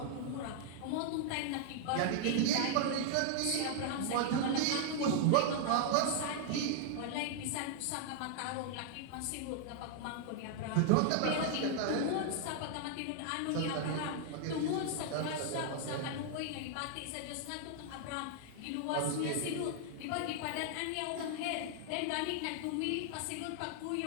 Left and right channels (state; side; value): different; both; correlation 0.00